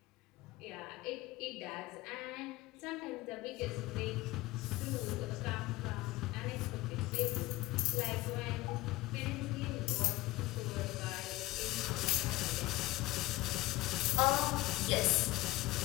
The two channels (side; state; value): right; quieter; 19.3 dB